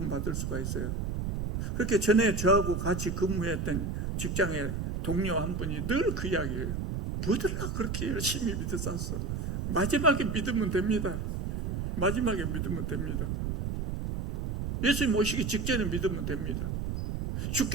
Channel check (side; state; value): right; noise; rumble, 2 dB below the sound